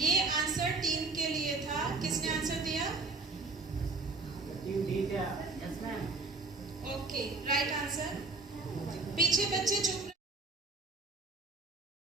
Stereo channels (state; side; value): quieter; left; 3.7 dB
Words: आंसर टीम के लिए था। किसने आंसर दिया? Okay, right answer. पीछे बच्चे चुप।